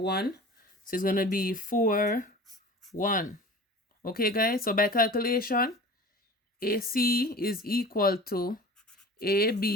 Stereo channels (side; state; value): both; normal; correlation 0.39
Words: So it's going to be 4, 1. Okay, guys, so by calculation, AC is equal to